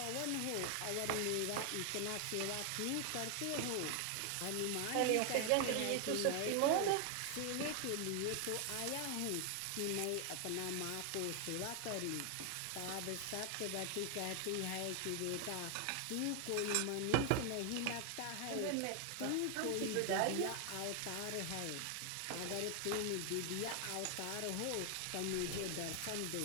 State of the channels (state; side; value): different; both; correlation 0.00